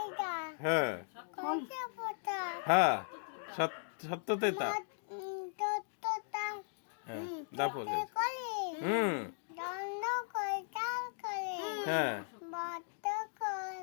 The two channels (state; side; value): silent; right; digital silence